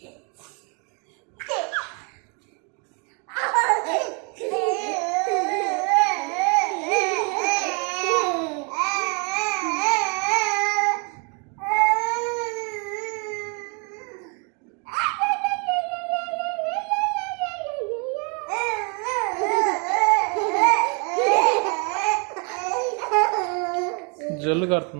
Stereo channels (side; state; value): left; quieter; 35.7 dB